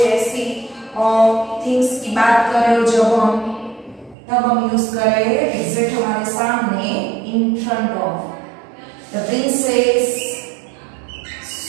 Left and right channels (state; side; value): drops out; left; at 4.2 s